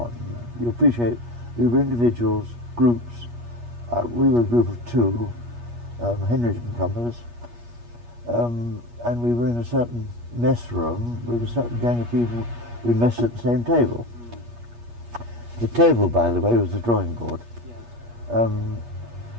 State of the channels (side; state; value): left; late; 8.4 ms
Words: You appreciate, we were individuals, groups. We were a group of two, Henry didn't come with us, and we were in a certain mess room with a certain gang of people. We messed at the same table. The table, by the way, was the drawing board. Yeah.